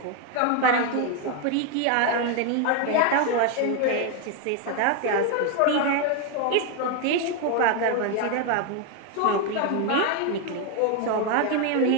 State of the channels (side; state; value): both; different; correlation 0.01